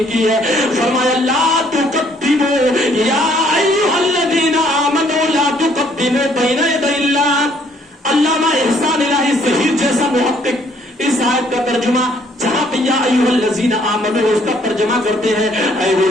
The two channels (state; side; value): normal; both; correlation 0.64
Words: کی ہے؟ فرمایا لا تقدموا یا ایھا الذین آمنوا لا تقدموا بین یدی اللہ. علامہ احسان الہی ظہیر جیسا محقق اس آیت کا ترجمہ جہاں پہ یا ایھا الذین آمنوا اس کا ترجمہ کرتے ہیں اے وہ